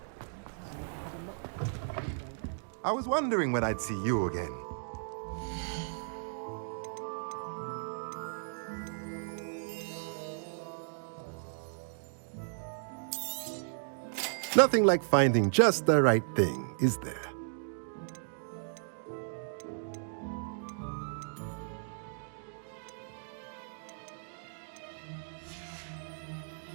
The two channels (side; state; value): left; silent; digital silence